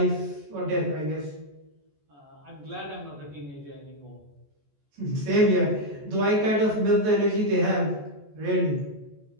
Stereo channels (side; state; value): left; late; 14 ms